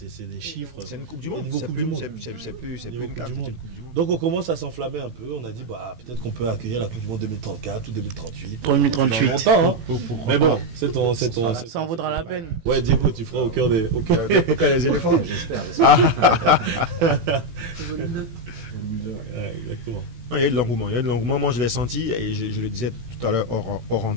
des chiffres. C'est une Coupe du Monde. Niveau Coupe du Monde. C'est niveau Coupe du Monde. Donc, on commence à s'enflammer un peu. On a dit, peut-être qu'on peut accueillir la Coupe du Monde 2034 ou 2038. 2038. Longtemps, hein. Mais bon, c'est ton. Ça en vaudra la peine. Ouais, Diego, tu feras au cœur des éléphants. J'espère. Volume 2. Ouais, exactement. Il y a de l'engouement. Moi, je l'ai senti et je le disais tout à l'heure hors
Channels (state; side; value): late; left; 18 ms